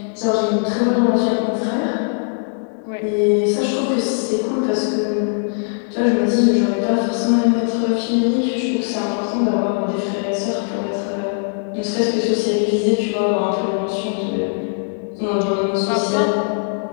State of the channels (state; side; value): silent; right; digital silence